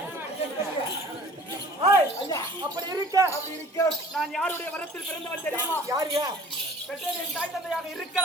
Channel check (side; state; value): both; normal; correlation 0.48